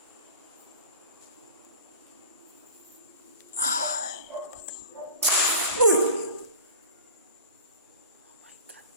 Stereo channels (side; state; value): both; inverted; correlation -0.39